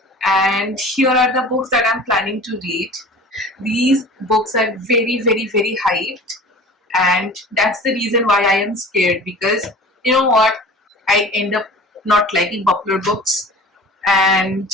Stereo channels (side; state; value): both; normal; correlation 0.40